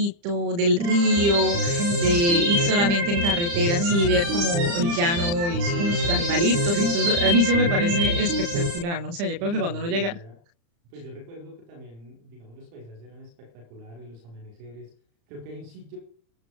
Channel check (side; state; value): left; late; 35 ms